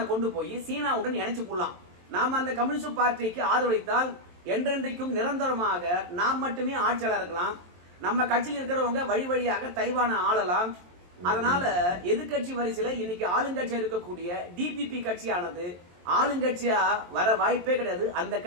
கொண்டு போய் சீனாவுடன் இணைச்சு போடலாம். நாம அந்த கம்யூனிஸ்ட் பார்ட்டிக்கு ஆதரவளித்தால் என்றென்றைக்கும் நிரந்தரமாக நாம் மட்டுமே ஆட்சியாளர் இருக்கலாம். நம்ம கட்சியில் இருக்கிறவங்க வழி வழியாக தைவானை ஆளலாம். அதனால எதிர்கட்சி வரிசையில இன்னைக்கு ஆளுங்கட்சியா இருக்கக்கூடிய டிபிபி கட்சியானது ஆளுங்கட்சியா வர வாய்ப்பே கிடையாது. அந்த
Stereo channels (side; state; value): left; late; 23 ms